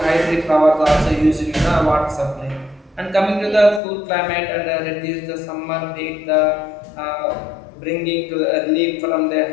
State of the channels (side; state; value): right; drops out; at 3.8 s